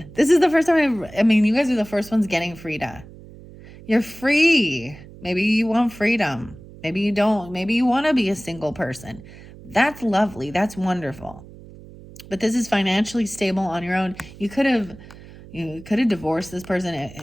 This is the first time I mean, you guys are the first ones getting Frida. You're free. Maybe you want freedom. Maybe you don't. Maybe you want to be a single person. That's lovely. That's wonderful. But this is financially stable on your own. You could have divorced this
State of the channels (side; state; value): right; noise; hum, 19 dB below the sound